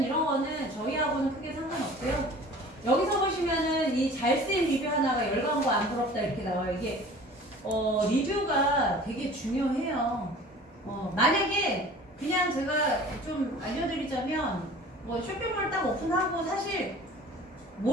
이런 거는 저희하고는 크게 상관없고요. 여기서 보시면은 이 잘 쓰인 리뷰 하나가 열광과 안 부럽다 이렇게 나와요. 이게 리뷰가 되게 중요해요. 만약에 그냥 제가 좀 알려드리자면 뭐 쇼핑몰 딱 오픈하고 사실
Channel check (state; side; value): normal; both; correlation 0.44